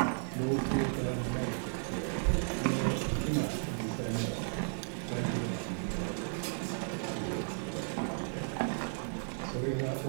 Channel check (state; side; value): silent; left; 55 dB below the other